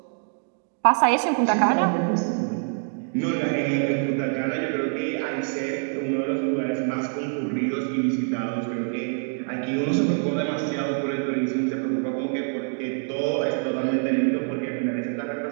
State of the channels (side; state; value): left; silent; 56 dB below the other